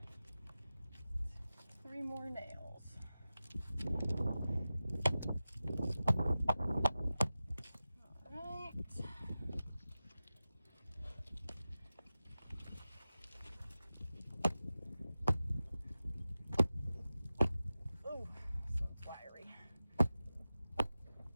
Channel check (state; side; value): inverted; both; correlation -0.95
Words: 3 more nails. All right. Ooh, so fiery. I'm